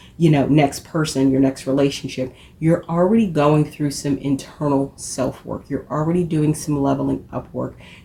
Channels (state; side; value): identical; both; correlation 1.00